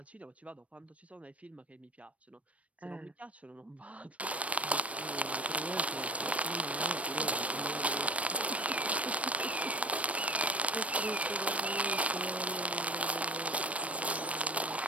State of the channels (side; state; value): left; late; 0.065 ms